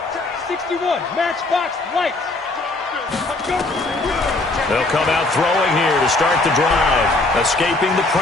61, matchbox, lights. They'll come out throwing here to start the drive. Escaping the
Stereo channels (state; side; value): quieter; right; 3.1 dB